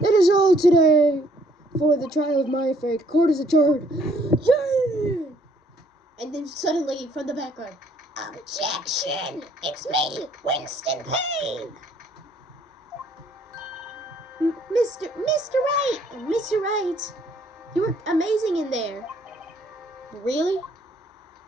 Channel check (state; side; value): normal; both; correlation 0.64